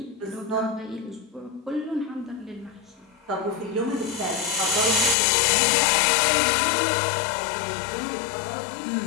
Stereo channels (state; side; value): drops out; right; at 5.2 s